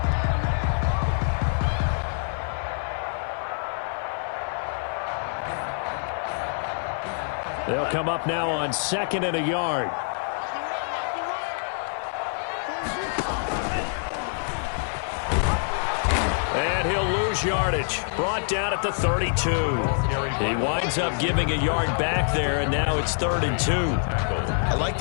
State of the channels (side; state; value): right; silent; digital silence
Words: They'll come up now on 2nd and a yard. And he'll lose yardage. yardage. Brought down at the 32. He winds up giving a yard back there, and now it's 3rd and 2. I like